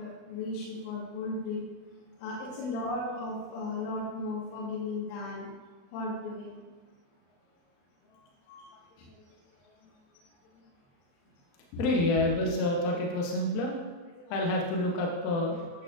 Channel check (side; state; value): right; late; 35 ms